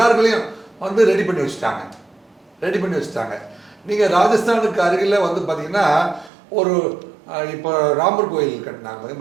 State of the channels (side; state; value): left; drops out; at 6.3 s